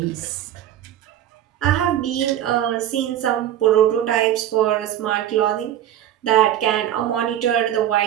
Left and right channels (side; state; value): left; quieter; 11.4 dB